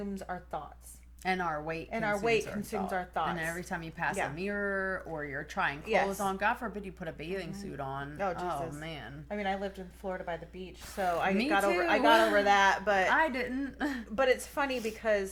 our thoughts. And our weight and our weight consumes our thoughts. And every time you pass Yeah. a mirror or you're trying clothes Yes. on, God forbid you put a bathing suit on. Oh, Jesus. Man. I mean, I lived in Florida by the beach, so I Me got too. over that, but I didn't. but it's funny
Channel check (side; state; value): both; identical; correlation 1.00